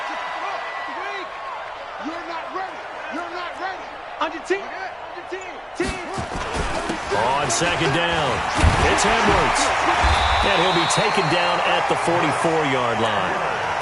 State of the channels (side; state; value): both; identical; correlation 1.00